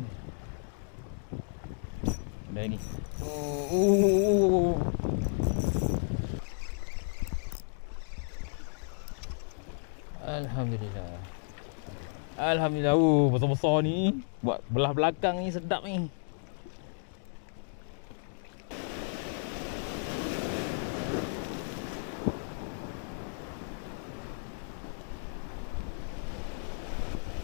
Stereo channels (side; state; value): right; silent; digital silence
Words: ni? Ada lagi. Alhamdulillah. Alhamdulillah. Besar-besar ni. Buat belah belakang ni sedap ni.